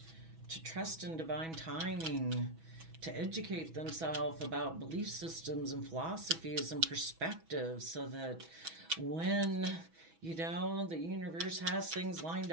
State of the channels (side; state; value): left; late; 6.1 ms